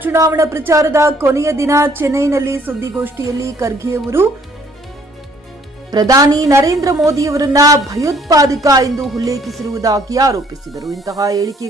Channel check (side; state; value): both; normal; correlation 0.61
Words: ಚುನಾವಣಾ ಪ್ರಚಾರದ ಕೊನೆಯ ದಿನ ಚೆನ್ನೈನಲ್ಲಿ ಸುದ್ದಿಗೋಷ್ಠಿಯಲ್ಲಿ ಖರ್ಗೆ ಅವರು ಪ್ರಧಾನಿ ನರೇಂದ್ರ ಮೋದಿಯವರನ್ನ ಭಯೋತ್ಪಾದಕ ಎಂದು ಉಲ್ಲೇಖಿಸಿರುವುದಾಗಿ ಆರೋಪಿಸಿದರು. ಇಂತಹ